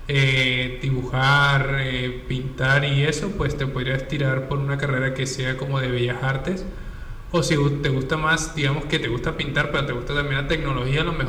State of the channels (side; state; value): both; identical; correlation 1.00